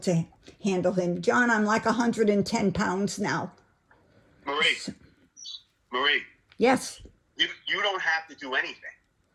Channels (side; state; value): both; identical; correlation 1.00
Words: handle him. John, I'm like 110 pounds now. Marie. Yes. You don't have to do anything.